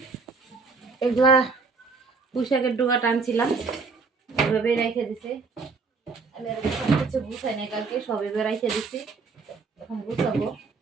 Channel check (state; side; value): quieter; left; 4.5 dB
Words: এগুলা পুঁইশাকের ডোকাটা আনছিলাম, এভাবেই রেখে দিছে। আমি আর সব কিছু গুছাই নাই, কালকে সব এভাবে রেখে দিছি। এখন গুছাবো,